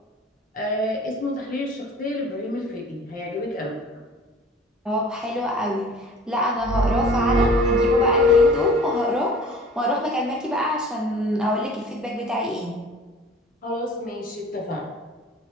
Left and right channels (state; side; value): normal; both; correlation 0.46